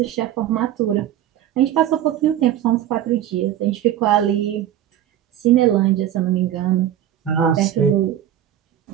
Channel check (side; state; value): left; quieter; 11.4 dB